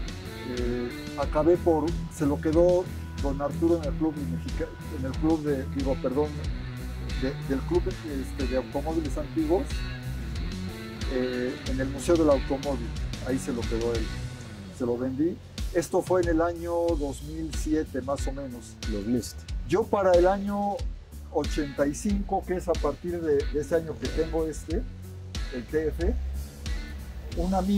se lo quedó don Arturo en el club del club de automóviles antiguos, en el Museo del Automóvil. Ahí se lo quedó él, se lo vendí. Esto fue en el año 2007 más o menos. 2007. Yo para el año 85, que es a partir de ese año que tengo el TF, un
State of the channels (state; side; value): identical; both; correlation 1.00